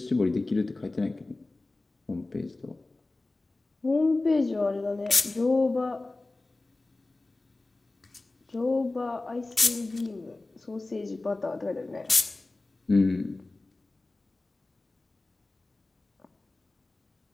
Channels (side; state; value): right; quieter; 3.1 dB